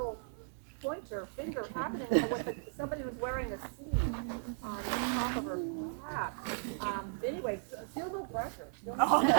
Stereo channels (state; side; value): silent; left; 54 dB below the other